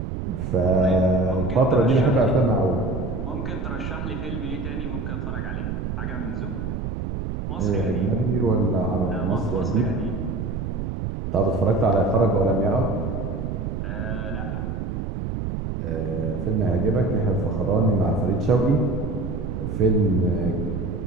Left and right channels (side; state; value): right; noise; rumble, 4 dB below the sound